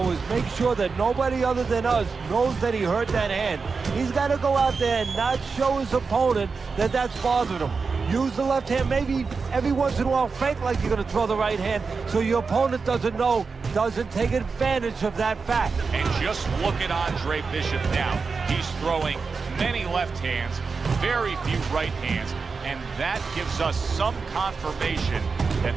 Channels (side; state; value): left; quieter; 4.8 dB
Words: is make sure that nobody other than us knows that he hurt that hand. He's got to go out there and not show his opponent that that's bothering him. Use the left hand, maybe every once in a while fake like you're going to throw the right hand so your opponent doesn't know, doesn't take advantage of that fact. And just look at Andre Bishop now. He's throwing many left hands, very few right hands, and that gives us some confirmation